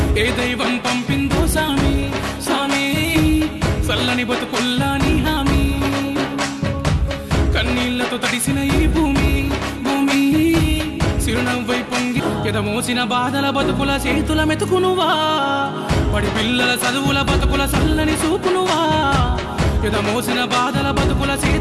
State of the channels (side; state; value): both; identical; correlation 1.00